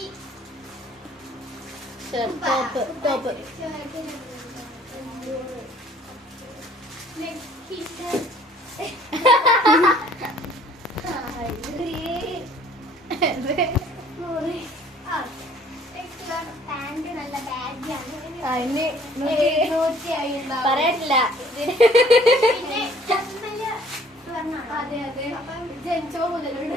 ടോപ്പ് പാന്റ് നല്ല ബാഗിയാണ്. പറയട്ടില്ല. പിന്നെ അതെ അതെ, ജനിച്ചോ മുതലുണ്ട്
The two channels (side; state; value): both; normal; correlation 0.56